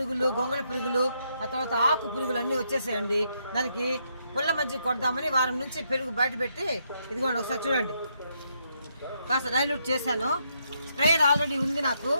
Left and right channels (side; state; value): both; inverted; correlation -0.77